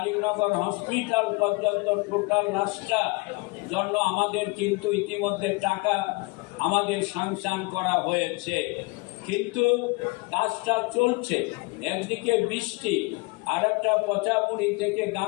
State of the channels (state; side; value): quieter; right; 26.8 dB